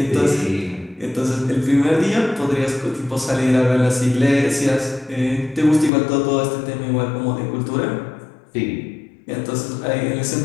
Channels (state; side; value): drops out; right; at 5.9 s